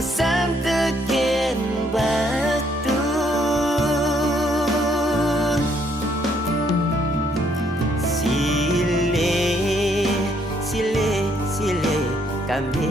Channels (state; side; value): normal; both; correlation 0.69